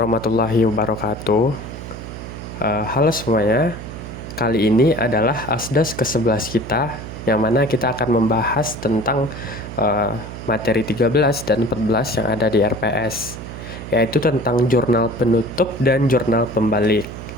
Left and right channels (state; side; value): noise; right; hum, 11 dB below the sound